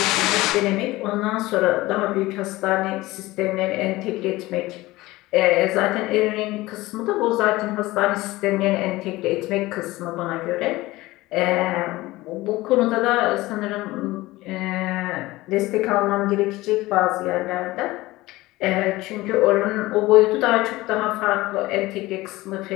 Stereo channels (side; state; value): right; quieter; 19.1 dB